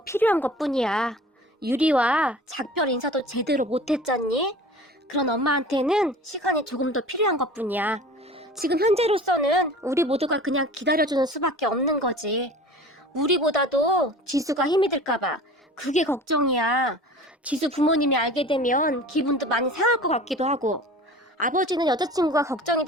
필요한 것뿐이야. 유리와 작별 인사도 제대로 못했잖니? 그런 엄마한테는 시간이 조금 더 필요한 것뿐이야. 지금 현재로서는 우리 모두가 그냥 기다려주는 수밖에 없는 거지. 우리보다도 지수가 힘이 들까봐 그게 걱정이야. 지수 부모님이 알게 되면 기분도 많이 상할 것 같기도 하고. 아버지는 여자친구가 걱정이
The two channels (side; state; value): both; normal; correlation 0.41